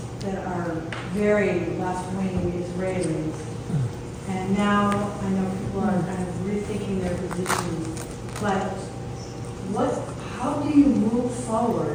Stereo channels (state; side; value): identical; both; correlation 1.00